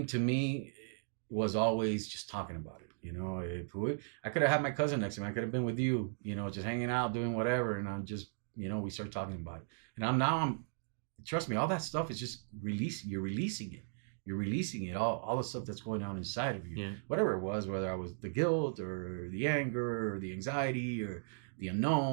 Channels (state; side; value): silent; left; digital silence